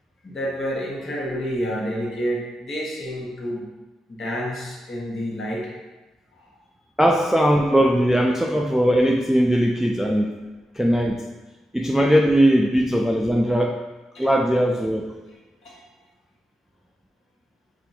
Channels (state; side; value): normal; both; correlation 0.91